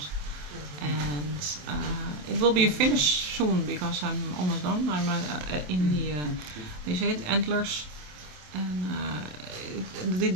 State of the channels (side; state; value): left; late; 27 ms